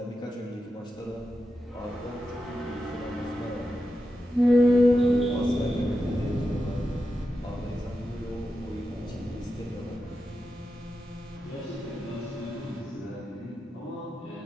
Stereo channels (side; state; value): both; normal; correlation 0.89